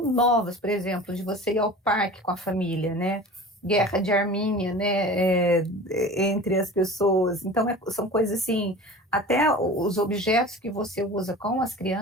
por exemplo, de você ir ao parque com a família, né? Guerra de Armínia, né? Entre as pessoas. Então, são coisas assim, até os objetos que você usa com as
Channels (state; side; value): normal; both; correlation 0.38